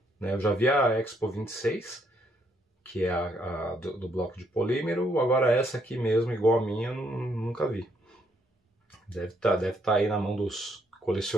né? Eu já vi a Expo 26, que é a do bloco de polímero. Agora essa aqui mesmo, igual a minha, eu nunca vi. Deve tá aí na mão dos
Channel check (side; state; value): both; normal; correlation 0.72